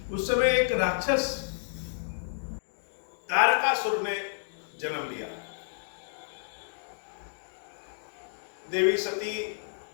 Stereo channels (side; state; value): right; silent; digital silence